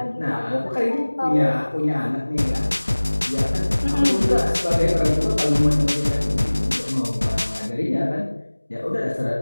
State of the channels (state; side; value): inverted; both; correlation -1.00